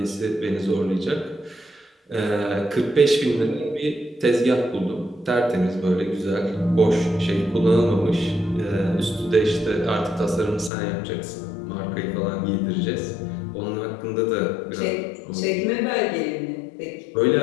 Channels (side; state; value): right; drops out; at 10.7 s